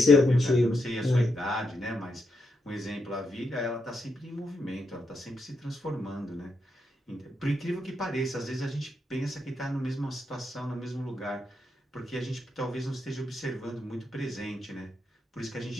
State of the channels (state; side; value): normal; both; correlation 0.82